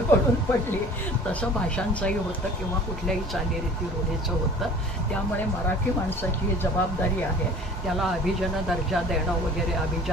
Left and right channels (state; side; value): normal; both; correlation 0.46